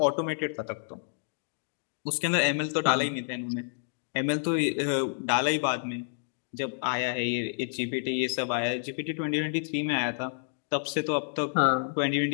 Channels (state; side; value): silent; right; digital silence